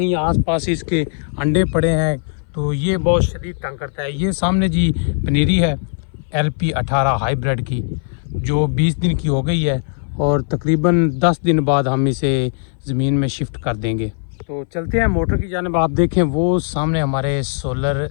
आसपास इसके अंडे पड़े हैं, तो ये बहुत शदीद तंग करता है। ये सामने जी पनीरी है LP18 हाइब्रिड की, जो 20 दिन की हो गई है और तकरीबन 10 दिन बाद हम इसे ज़मीन में शिफ्ट कर देंगे। तो चलते हैं मोटर की जानिब। आप देखें वो सामने हमारे सोलर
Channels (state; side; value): silent; right; 60 dB below the other